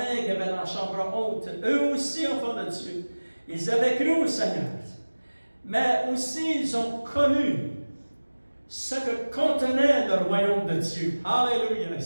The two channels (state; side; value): inverted; both; correlation -1.00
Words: qui avaient dans la chambre haute, eux aussi, enfants de Dieu, ils avaient cru au Seigneur. mais aussi ils ont connu ce que contenait le royaume de Dieu. Alléluia!